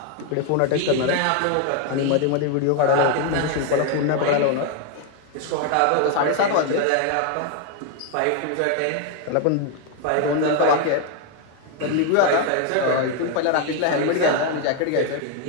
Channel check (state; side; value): different; both; correlation 0.01